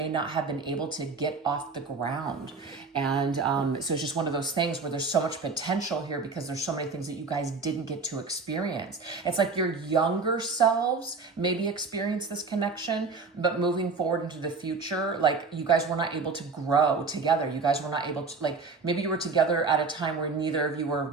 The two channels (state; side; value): quieter; left; 4.4 dB